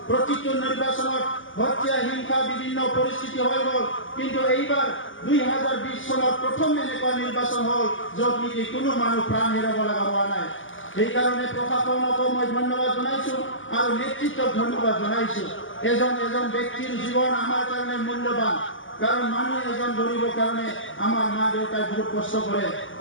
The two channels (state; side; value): late; right; 0.57 ms